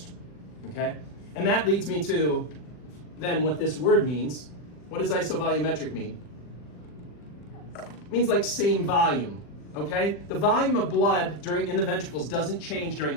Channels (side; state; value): right; late; 40 ms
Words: okay? And that leads me to than what this word means. What does isovolumetric mean? It means like same volume, okay? The volume of blood in the ventricles doesn't change during